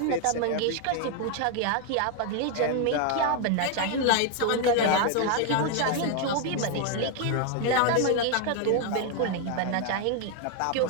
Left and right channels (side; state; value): both; different; correlation 0.00